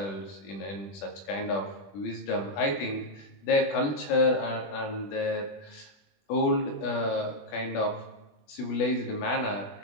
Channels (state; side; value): late; right; 21 ms